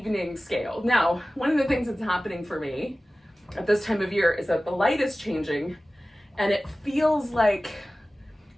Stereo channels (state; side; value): normal; both; correlation 0.97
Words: scale. Now, one of the things that's happening for me at this time of year is that the light is changing and it feels like